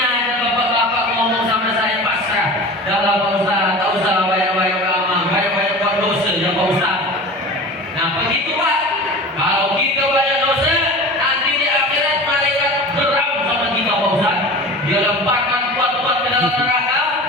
ada bapak-bapak ngomong sama saya pasrah. Dalam Pak Ustaz, tak usah banyak-banyak amal, banyak-banyak buat dosa ya Pak Ustaz. Nah begitu Pak. Kalau kita banyak dosa, nanti di akhirat malaikat geram sama kita Pak Ustaz. Dia lemparkan kuat-kuat ke dalam neraka,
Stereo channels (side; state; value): both; normal; correlation 0.35